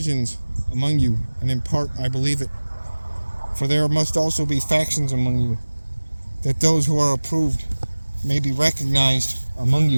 among you, and in part I believe it. For there must also be factions among you, that those who are approved may be recognized among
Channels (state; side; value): inverted; both; correlation -1.00